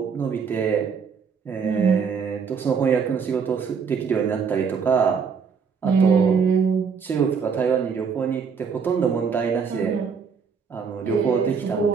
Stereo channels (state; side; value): quieter; left; 6.0 dB